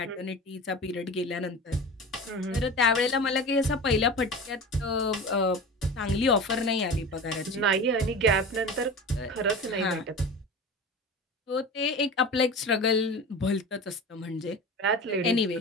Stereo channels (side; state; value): both; normal; correlation 0.33